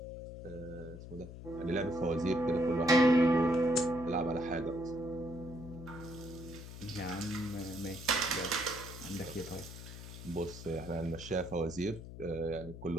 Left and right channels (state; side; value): noise; left; hum, 12 dB below the sound